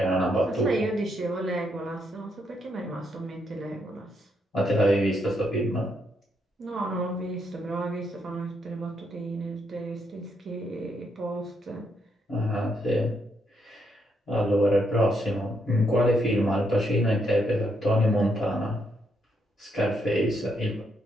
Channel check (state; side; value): normal; both; correlation 0.77